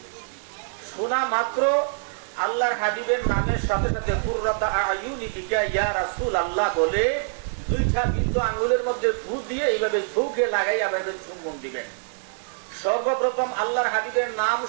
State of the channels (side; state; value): left; silent; digital silence